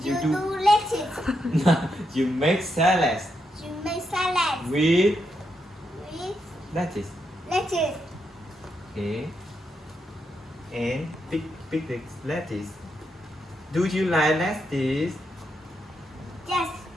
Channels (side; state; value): both; normal; correlation 0.82